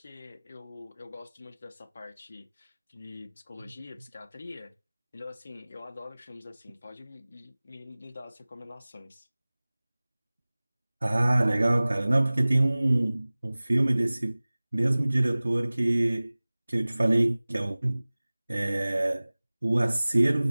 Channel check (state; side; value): inverted; both; correlation -0.99